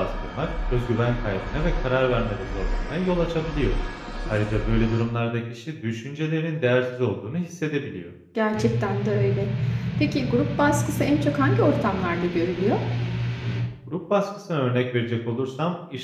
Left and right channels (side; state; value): both; identical; correlation 1.00